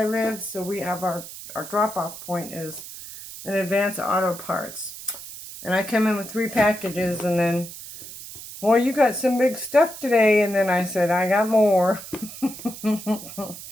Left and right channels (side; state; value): right; noise; hiss, 13 dB below the sound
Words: live, so we have our drop-off point is an Advance Auto Parts. And I come in with 3 packages, and then, well, you got some big stuff today, and then I said, I got more.